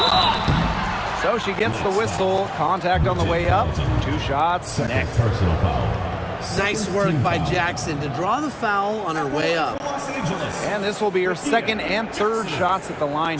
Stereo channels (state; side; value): identical; both; correlation 1.00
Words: So she gets the whistle. Contact on the way up. 2 shots. Next. Personal foul. Nice work by Jackson to draw the foul on her way up. And this will be her second and third shots at the line